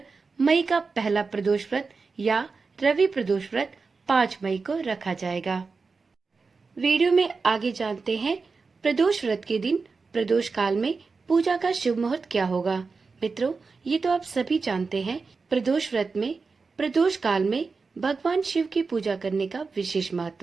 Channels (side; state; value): left; quieter; 4.5 dB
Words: मई का पहला प्रदोष व्रत या रवि प्रदोष व्रत 5 मई को रखा जाएगा। वीडियो में आगे जानते हैं प्रदोष व्रत के दिन प्रदोष काल में पूजा का शुभ मुहूर्त क्या होगा। मित्रों, ये तो आप सभी जानते हैं, प्रदोष व्रत में प्रदोष काल में भगवान शिव की पूजा करने का विशेष